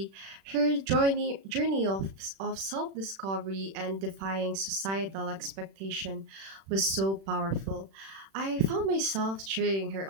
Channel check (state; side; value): late; left; 36 ms